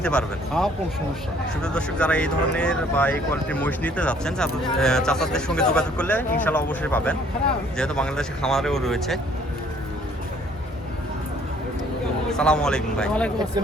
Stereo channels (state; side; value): normal; both; correlation 0.60